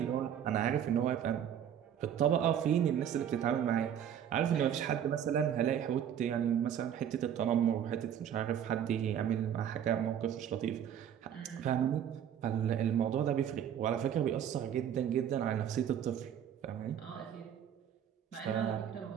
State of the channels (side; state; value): left; quieter; 9.4 dB